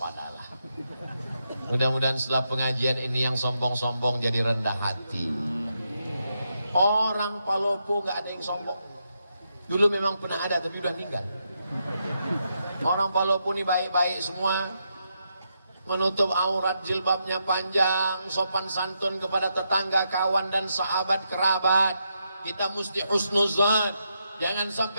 Mudah-mudahan setelah pengajian ini yang sombong-sombong jadi rendah hati. Orang Palopo nggak ada yang sombong. Dulu memang pernah ada tapi udah meninggal. Orang Palopo ini baik-baik semua, menutup aurat, jilbabnya panjang, sopan santun kepada tetangga, kawan dan sahabat kerabat. Kita mesti husnuzan, jangan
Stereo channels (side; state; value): both; inverted; correlation -0.82